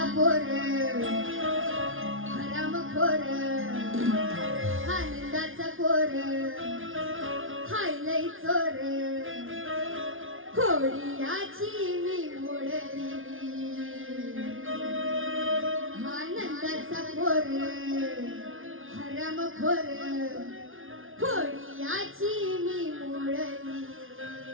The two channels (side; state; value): left; late; 0.59 ms